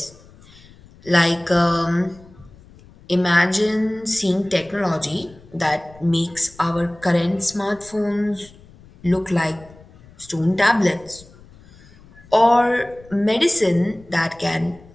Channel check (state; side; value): noise; left; rumble, 24 dB below the sound